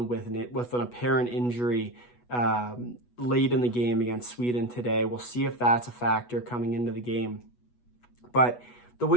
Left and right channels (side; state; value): right; late; 8.2 ms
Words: with an apparent injury late in the game against Sweden today. We'll see if that's a factor coming into the game. But the